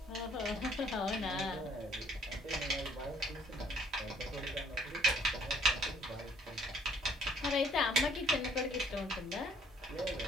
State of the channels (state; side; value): normal; both; correlation 0.62